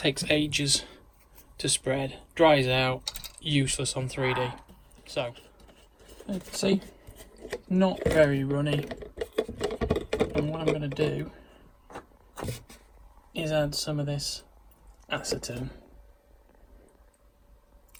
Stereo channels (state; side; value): identical; both; correlation 1.00